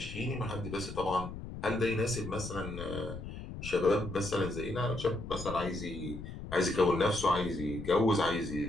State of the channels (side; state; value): left; noise; rumble, 9 dB below the sound